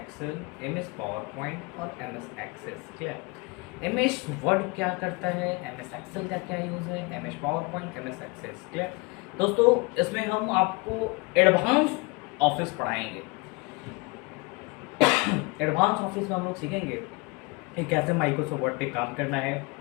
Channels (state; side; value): quieter; right; 27.3 dB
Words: M S PowerPoint और M S Access. Clear? M S Word क्या करता है, एम एस एक्सेल का क्या यूज़ है, M S PowerPoint, M S Access. Clear? दोस्तों इसमें हम आपको एडवांस ऑफिस पढ़ाएंगे। एडवांस ऑफिस में हम लोग सीखेंगे कि कैसे माइक्रोसॉफ्ट वर्ड पे काम करना है,